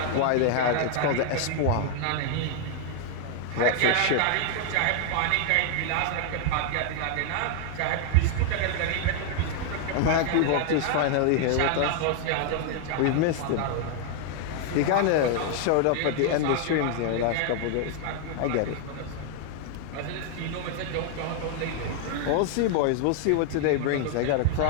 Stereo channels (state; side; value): different; both; correlation 0.00